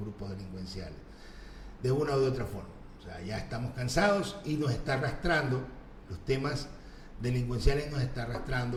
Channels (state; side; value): identical; both; correlation 1.00